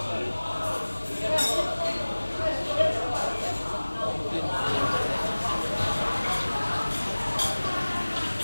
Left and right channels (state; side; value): inverted; both; correlation -1.00